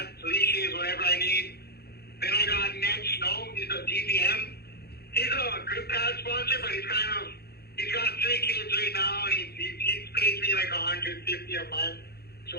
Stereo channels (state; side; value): late; right; 0.46 ms